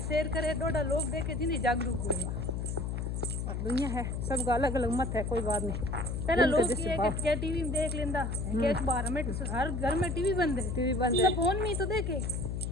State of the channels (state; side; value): noise; left; hum, 2 dB below the sound